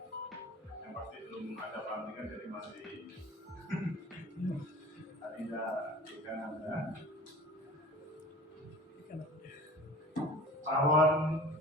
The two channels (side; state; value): both; normal; correlation 0.41